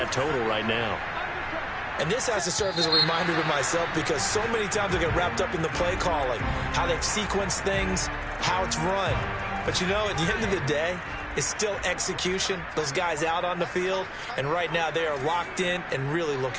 total right now. And this has to serve as a reminder to myself because so many times I get wrapped up in the play calling, how they've sequenced things, how it's run. But you know, at the end of the day, it's still execution. Those guys out on the field, and right now they are locked in and really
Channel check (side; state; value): both; identical; correlation 1.00